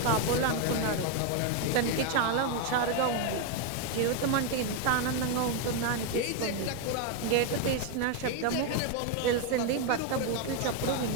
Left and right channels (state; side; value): different; both; correlation 0.01